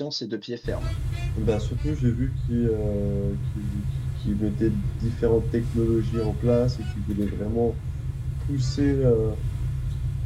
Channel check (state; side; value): identical; both; correlation 1.00